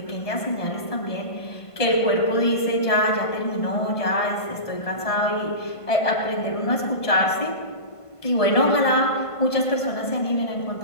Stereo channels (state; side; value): late; right; 1.5 ms